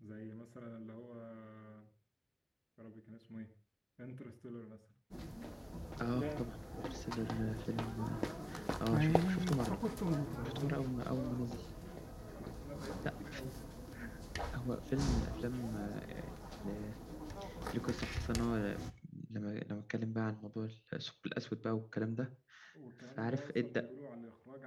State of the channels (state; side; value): identical; both; correlation 1.00